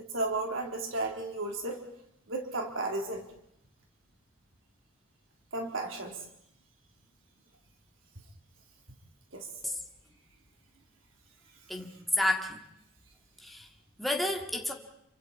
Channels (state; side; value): normal; both; correlation 0.33